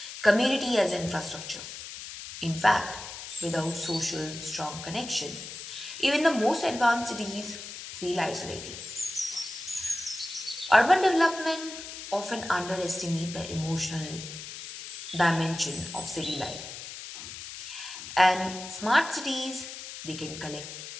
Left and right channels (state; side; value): noise; left; hiss, 10 dB below the sound